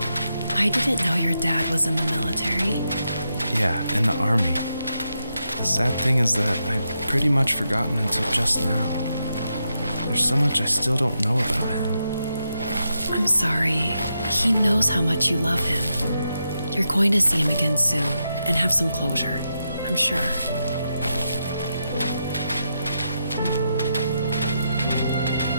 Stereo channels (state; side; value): inverted; both; correlation -0.84